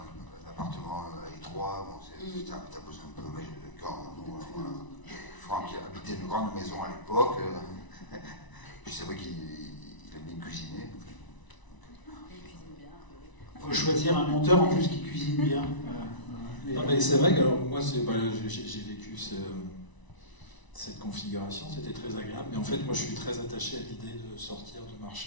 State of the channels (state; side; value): late; right; 1.0 ms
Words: un appartement étroit, bon, t'as besoin un peu. Mais quand Franck habitait une grande maison à l'époque, puis c'est vrai qu'il aime bien cuisiner. il cuisine bien. Il faut choisir un monteur en plus qui cuisine bien. Non, mais c'est vrai que alors, moi, j'ai vécu cette configuration, c'était très agréable, mais en fait, moi, je suis très attaché à l'idée de sortir, de